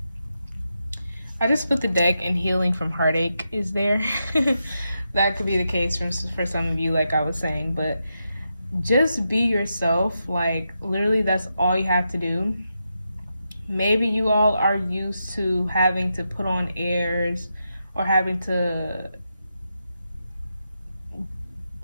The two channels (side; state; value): both; inverted; correlation -0.86